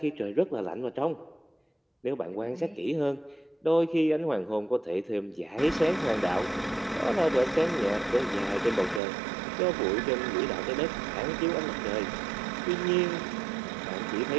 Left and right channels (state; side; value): drops out; left; at 9.0 s